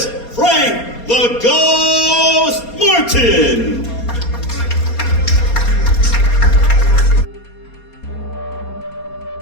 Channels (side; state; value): right; late; 4.3 ms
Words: Frank the Ghost Martin.